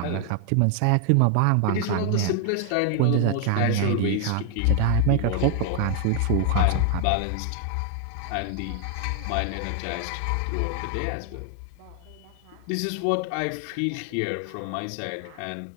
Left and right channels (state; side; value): different; both; correlation 0.00